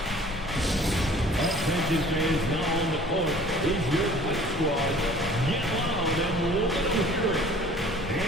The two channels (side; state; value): both; normal; correlation 0.50